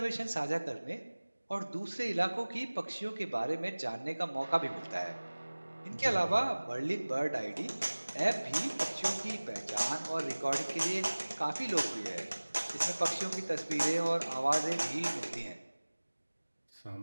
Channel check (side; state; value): both; inverted; correlation -1.00